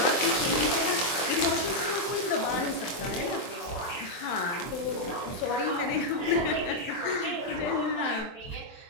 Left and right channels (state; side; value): late; right; 23 ms